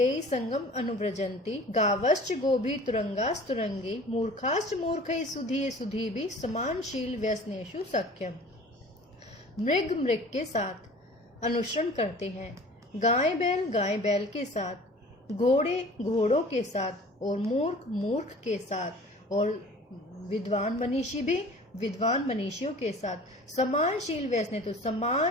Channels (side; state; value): both; normal; correlation 0.45